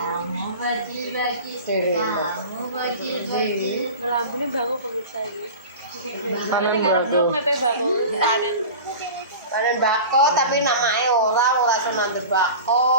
Lambune bangun pemirsa ini. Soalnya ngarep dok mepe bangun panen. Panen bako tapi namanya ora iso nandur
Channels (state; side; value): inverted; both; correlation -0.34